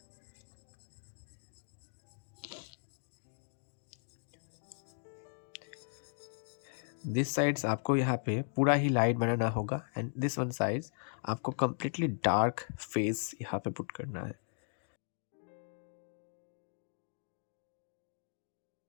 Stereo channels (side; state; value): right; silent; digital silence